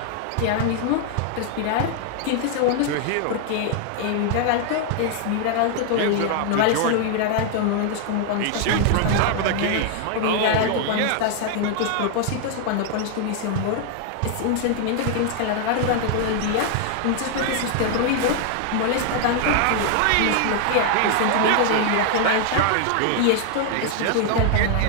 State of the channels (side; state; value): both; different; correlation 0.00